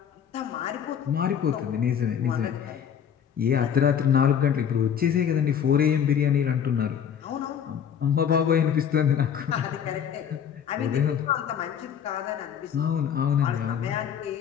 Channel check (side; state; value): right; quieter; 8.3 dB